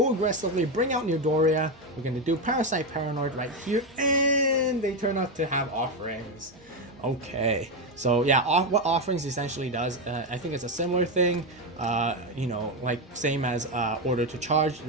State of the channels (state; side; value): noise; right; hum, 29 dB below the sound